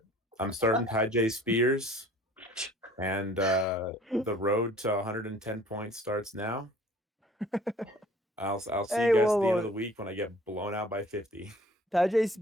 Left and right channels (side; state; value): both; normal; correlation 0.52